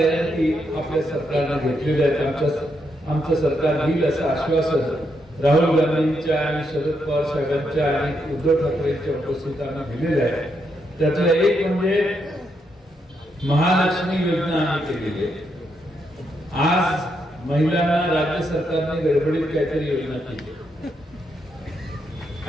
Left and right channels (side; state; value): both; normal; correlation 0.80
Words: आपल्या सरकारने घेतलेल्या आहेत. आमचं सरकार घेईल असं आश्वासन राहुल गांधींच्या आणि शरद पवार साहेबांच्या आणि उद्धव ठाकरेंच्या उपस्थितीत आम्ही दिलेलं आहे. त्यातलं एक म्हणजे महालक्ष्मी योजना आम्ही केलेली आहे. आज महिलांना राज्य सरकारने गडबडीत काहीतरी योजना केली